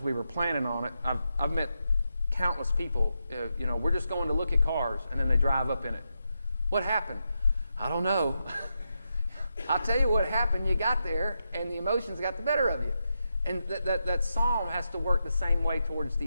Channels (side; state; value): both; inverted; correlation -0.85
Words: we were planning on it. I've met countless people. We're just going to look at cars, and then they drive up in it. What happened? I don't know. I'll tell you what happened. You got there, and the emotions got the better of you. And that psalm has to work the same way towards